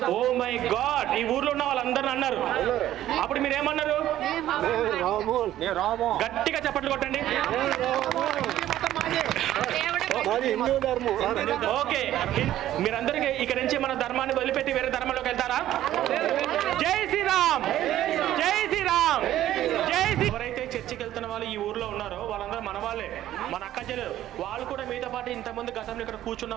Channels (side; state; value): left; quieter; 13.1 dB